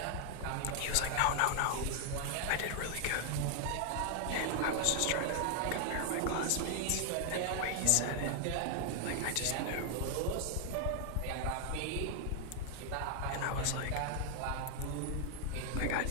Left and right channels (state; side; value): different; both; correlation 0.00